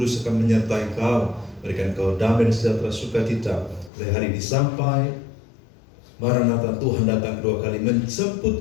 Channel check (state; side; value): drops out; right; at 3.9 s